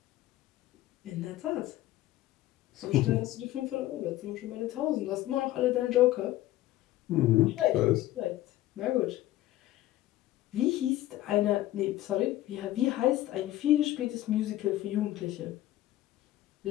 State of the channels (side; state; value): right; quieter; 15.2 dB